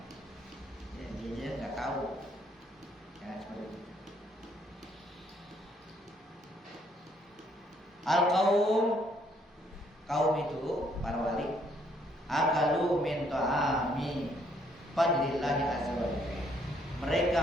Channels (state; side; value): normal; both; correlation 0.68